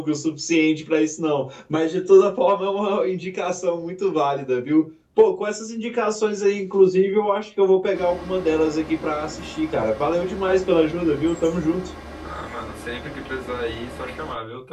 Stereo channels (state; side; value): identical; both; correlation 1.00